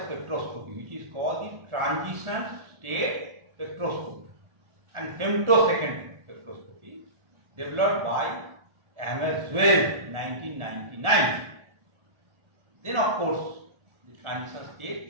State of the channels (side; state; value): left; late; 1.4 ms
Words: spectroscopy, which is called the transition state spectroscopy and femtosecond spectroscopy, developed by M.Sc. 1999. Then, of course, the transition